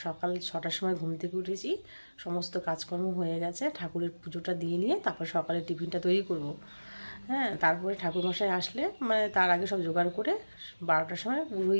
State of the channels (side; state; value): both; inverted; correlation -1.00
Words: সকাল 6টার সময় ঘুম থেকে উঠেছি, সমস্ত কাজকর্ম হয়ে গেছে। ঠাকুরের পুজোটা দিয়ে নিয়ে তারপর সকালে টিফিনটা তৈরি করব। হ্যাঁ, তারপরে ঠাকুরমশাই আসলে তার আগে সব জোগাড় করে 12টার সময়